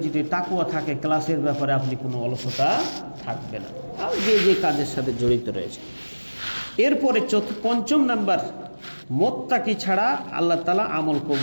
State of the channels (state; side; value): inverted; both; correlation -1.00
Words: যদি তাকওয়া থাকে, ক্লাসের ব্যাপারে আপনি কোনো অলসতা থাকবে না, আর যে যে কাজের সাথে জড়িত রয়েছে। এরপরে পঞ্চম নাম্বার, মুত্তাকি ছাড়া আল্লাহ তাআলা আমল